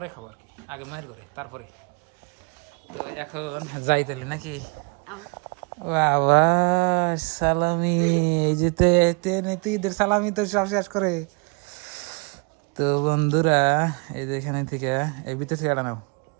খাবো আর কি, আগে মায়ের ঘরে তারপরে। তো এখন যাই তাহলে নাকি। বাবা সালামি, এই যে তো ঈদের সালামি তো সব শেষ করে। তো বন্ধুরা, এই যে এখানে থেকে এই ভিতর থেকে এটা নাও,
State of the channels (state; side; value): quieter; left; 33.5 dB